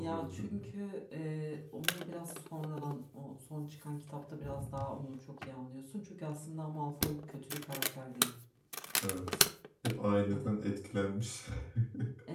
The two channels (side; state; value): both; identical; correlation 1.00